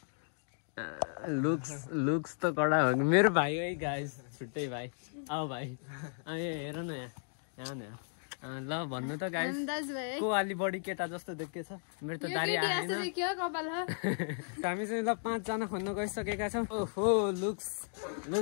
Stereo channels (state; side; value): silent; right; digital silence